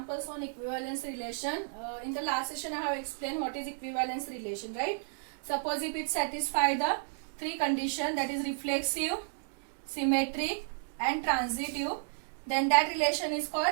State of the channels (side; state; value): left; silent; digital silence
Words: on equivalence relation. In the last session I have explained what is equivalence relation, right? Suppose if it satisfies the three conditions, that is reflexive, symmetric and transitive, then that relation is